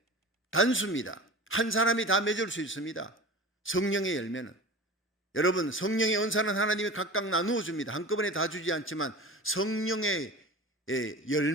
단수입니다. 한 사람이 다 맺을 수 있습니다. 성령의 열매는. 여러분, 성령의 은사는 하나님이 각각 나누어 줍니다. 한꺼번에 다 주지 않지만 성령의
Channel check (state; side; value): normal; both; correlation 0.34